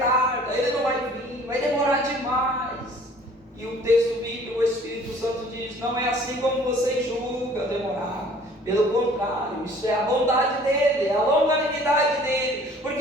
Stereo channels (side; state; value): both; normal; correlation 0.53